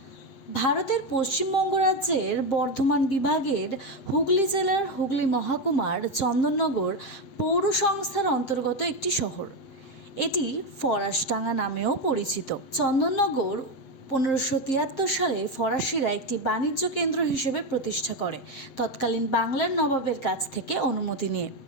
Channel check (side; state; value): right; late; 7.6 ms